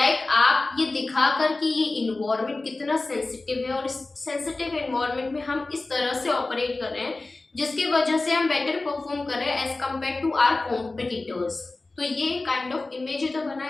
ये दिखाकर कि ये इन्वायरमेंट कितना सेंसिटिव है और इस सेंसिटिव इन्वायरमेंट में हम इस तरह से ऑपरेट कर रहे हैं जिसकी वजह से हम बेटर परफॉर्म कर रहे हैं as compare to our competitors. तो ये काइंड ऑफ इमेज ही तो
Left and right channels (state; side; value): quieter; right; 3.2 dB